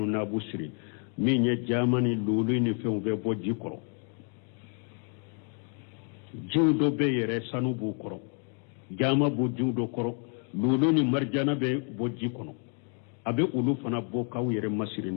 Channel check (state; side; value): quieter; right; 38.9 dB